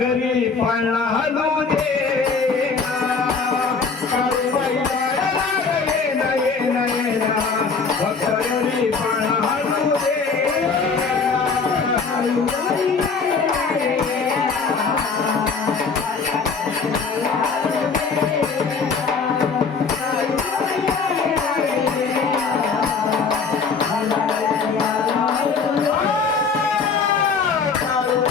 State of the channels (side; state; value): right; quieter; 5.0 dB